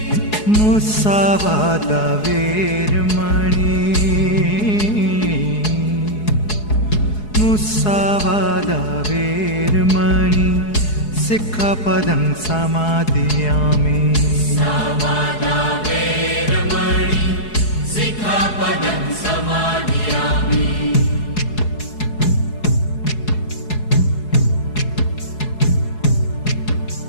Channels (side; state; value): right; late; 4.7 ms